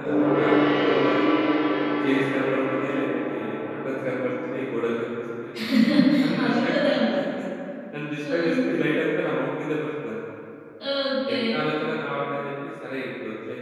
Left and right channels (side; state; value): both; identical; correlation 1.00